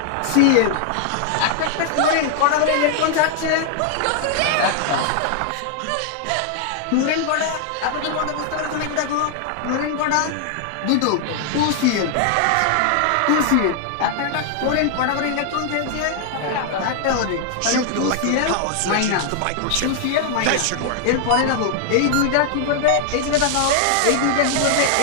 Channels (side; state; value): both; different; correlation 0.00